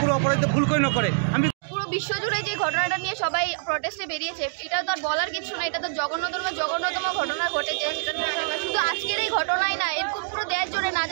কোনো অপরাধী ভুল করে নকরে। আমি পুরো বিশ্বজুড়ে যে ঘটনাটা নিয়ে সবাই প্রটেস্টে বেরিয়েছে, এটা তো আর বলার কিছু না। এটা তো জঘন্যতম ঘটনা ঘটেছে। শুধু আজকের এই ঘটনাই না, এরকম পুরো দেশ জুড়ে না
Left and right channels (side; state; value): left; silent; digital silence